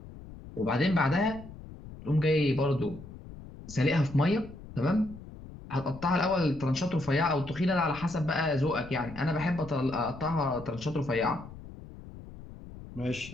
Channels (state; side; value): noise; left; rumble, 15 dB below the sound